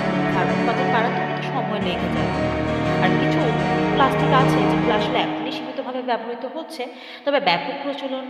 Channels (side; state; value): both; identical; correlation 1.00